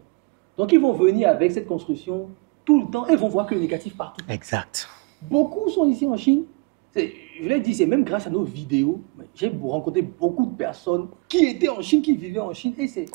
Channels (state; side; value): quieter; left; 29.1 dB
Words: Donc, ils vont venir avec cette construction tout le temps et vont voir que le négatif partout. Exact. Beaucoup sont ici en Chine. Je l'ai dit, c'est même grâce à nos vidéos. J'ai rencontré beaucoup de personnes qui étaient en Chine, qui vivaient en Chine. Et c'est